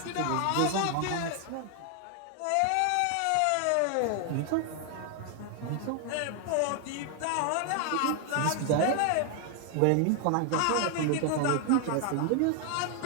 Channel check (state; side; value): different; both; correlation 0.00